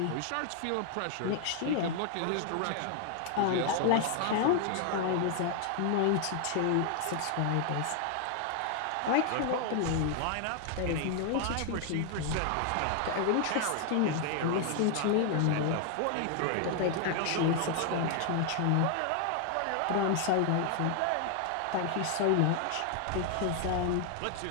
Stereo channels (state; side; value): different; both; correlation 0.00